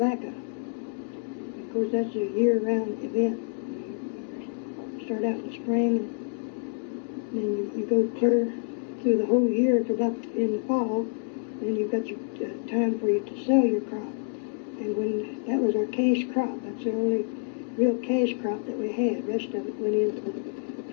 Of course, that's a year-round event. You start out in the spring, and then you go clear through the whole year to about in the fall. Then you've got your time for you to sell your crop. And when that was our cash crop, that's the only real cash crop that we had. The rest of it went into the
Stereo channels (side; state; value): right; silent; 56 dB below the other